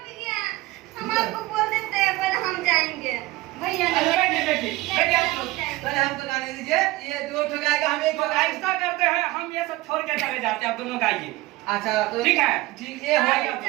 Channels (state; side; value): quieter; left; 19.2 dB